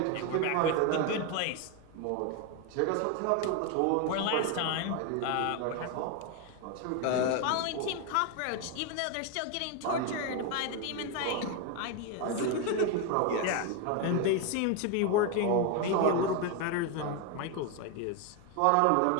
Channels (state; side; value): different; both; correlation 0.01